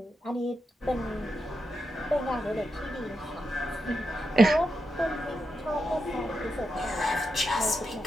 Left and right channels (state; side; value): normal; both; correlation 0.86